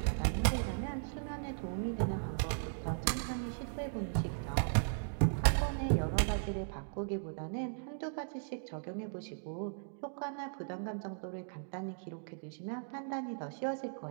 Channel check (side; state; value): left; silent; digital silence